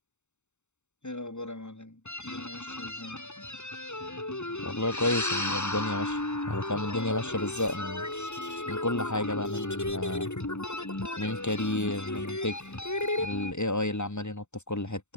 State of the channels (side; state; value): right; late; 0.83 ms